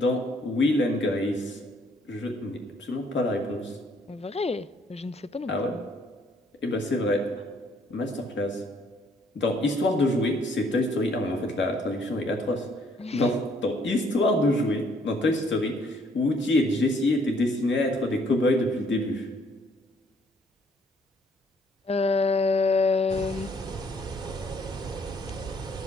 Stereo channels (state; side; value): normal; both; correlation 0.65